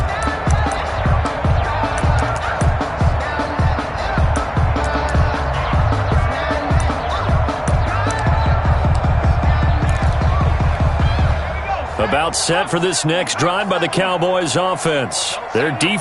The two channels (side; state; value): both; identical; correlation 1.00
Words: About set for this next drive by the Cowboys offense. Their